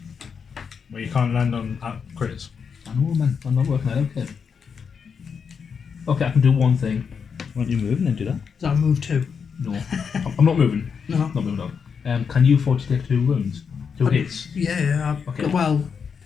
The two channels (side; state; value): right; quieter; 6.3 dB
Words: Well, you can't land on crits. I know, man. I'm not working out. Okay. Okay, I can do one thing. Why don't you move and then do that? Does that move 2? No, I'm not moving. No. Not moving on. Can you afford to take 2 wounds? 2 hits? Yeah. Okay. Well,